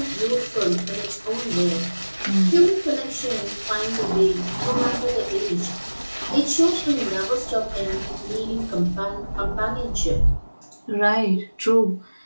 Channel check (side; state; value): both; inverted; correlation -1.00